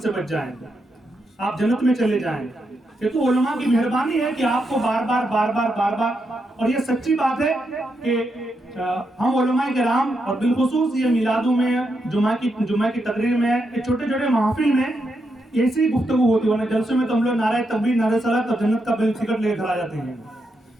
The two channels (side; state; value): both; normal; correlation 0.83